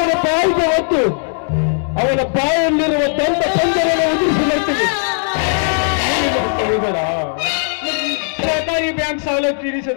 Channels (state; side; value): silent; right; digital silence